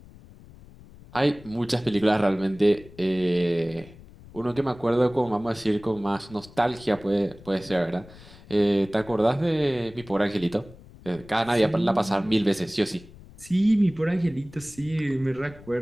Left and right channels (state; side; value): noise; left; rumble, 21 dB below the sound